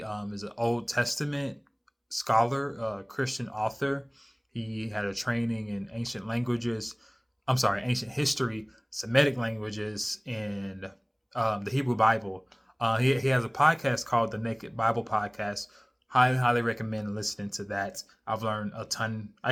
is an Old Testament scholar, Christian author. He had a training in ancient languages. ancient history, Semitic languages, and the Hebrew Bible. He has a podcast called the Naked Bible Podcast. Highly recommend listening to that. I've learned a ton.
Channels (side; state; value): both; identical; correlation 1.00